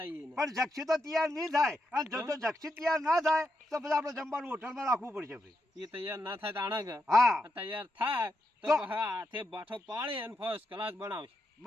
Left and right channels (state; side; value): normal; both; correlation 0.83